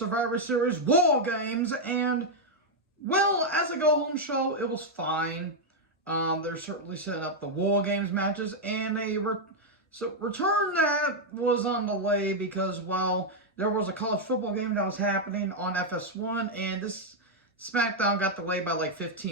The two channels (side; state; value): both; normal; correlation -0.01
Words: Series War Games, and, well, as a go-home show, it was fine. They're certainly setting up the War Games matches, and return that was on delay because, well, there was a college football game that was happening on FS1, and this Smackdown got delayed by like